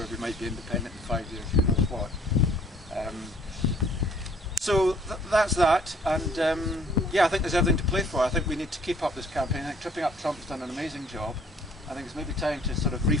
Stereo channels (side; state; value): both; normal; correlation 0.58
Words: we might be independent in 5 years, who knows what. So that's that, and yeah, I think there's everything to play for. I think we need to keep up this campaign. I think Tripping Up Trump's done an amazing job. I think it's maybe time to sort of